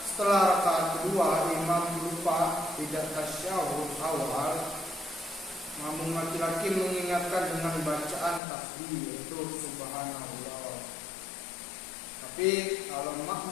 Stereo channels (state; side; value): drops out; right; at 8.4 s